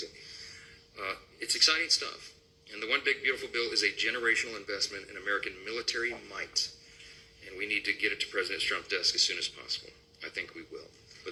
It's exciting stuff. And the One Big Beautiful Bill is a generational investment in American military might. And we need to get it to President Trump's desk as soon as possible. I think we will.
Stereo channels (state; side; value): identical; both; correlation 1.00